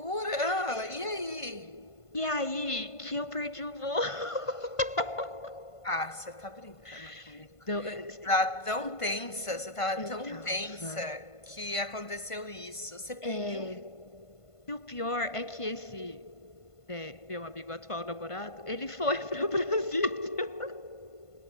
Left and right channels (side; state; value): right; late; 1.5 ms